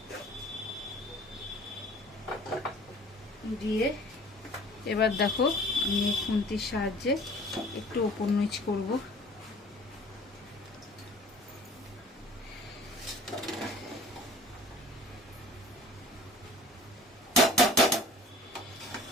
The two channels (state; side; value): normal; both; correlation 0.48